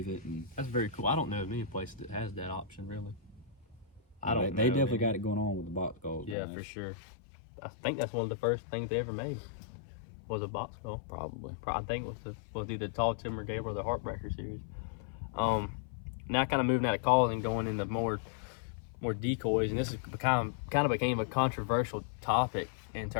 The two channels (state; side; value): drops out; right; at 6.4 s